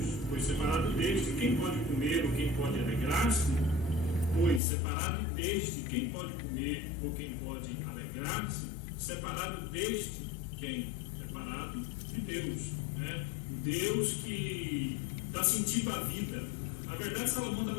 pois separado deste, quem pode comer ou quem pode alegrar-se? Pois separado deste, quem pode comer ou quem pode alegrar-se? Separado deste, quem? Separado de Deus, né? Deus que dá sentido à vida. Na verdade, Salomão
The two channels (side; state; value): right; drops out; at 4.6 s